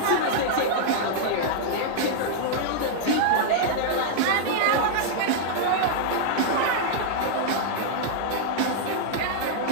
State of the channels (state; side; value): different; both; correlation -0.01